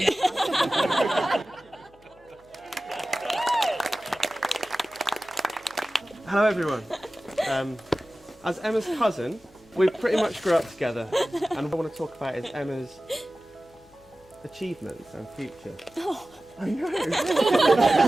Hello everyone. As Emma's cousin, we pretty much grew up together, and what I want to talk about is Emma's achievements and future. Oh. I know.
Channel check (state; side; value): noise; left; hum, 29 dB below the sound